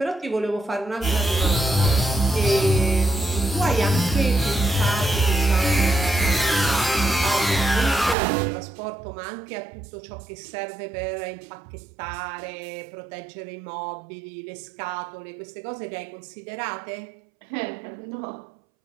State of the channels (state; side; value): drops out; left; at 8.2 s